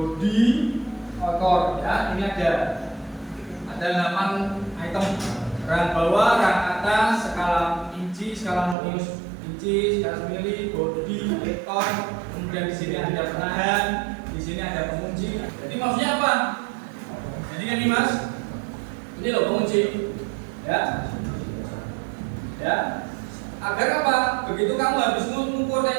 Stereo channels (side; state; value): left; drops out; at 8.8 s